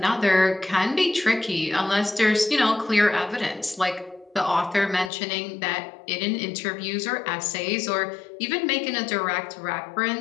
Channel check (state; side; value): drops out; right; at 5.1 s